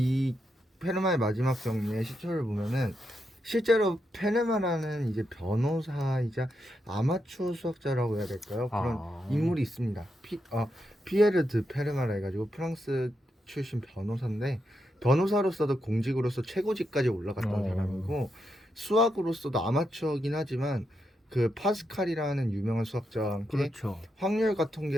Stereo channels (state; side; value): normal; both; correlation 0.83